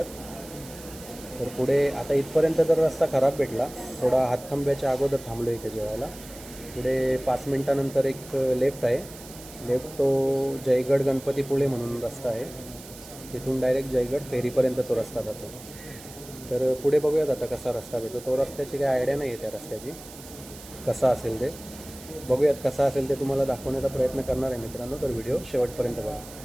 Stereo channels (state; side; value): noise; right; hiss, 17 dB below the sound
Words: तर पुढे आता इथपर्यंत तर रस्ता खराब भेटला, थोडा हातखंब्याच्या अगोदर थांबलो इथे जेवायला. पुढे 5 मिनटानंतर एक लेफ्ट आहे, लेफ्ट तो जयगड गणपतीपुळे म्हणून रस्ता आहे. तिथून डायरेक्ट जयगड फेरीपर्यंत तो रस्ता जातो. तर पुढे बघूयात आता कसा रस्ता भेटतो. तो रस्त्याची काही आयडिया नाही आहे त्या रस्त्याची, कसा असेल ते बघूयात. कसा असेल ते तुम्हाला दाखवण्याचा प्रयत्न करणार आहे मित्रांनो, तर व्हिडिओ शेवटपर्यंत बघा.